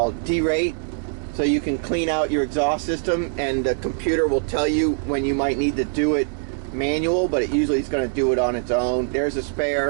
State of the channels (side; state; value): left; silent; digital silence